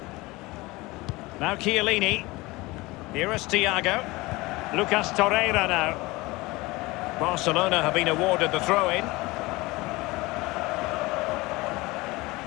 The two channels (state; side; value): quieter; right; 21.8 dB